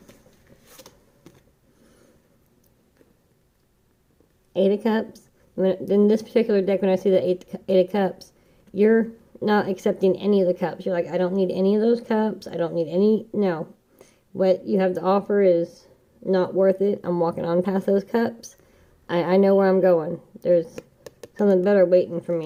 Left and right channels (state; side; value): identical; both; correlation 1.00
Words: Eight of Cups. In this particular deck, when I see the Eight of Cups, you're not accepting any of the cups. You're like, I don't need any of those cups. I don't need any. No. What you have to offer is not worth it. I'm walking on past those cups. I know where I'm going. There's something better waiting for